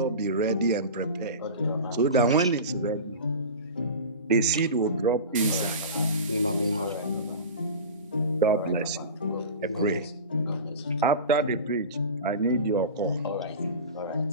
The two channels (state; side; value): inverted; both; correlation -0.31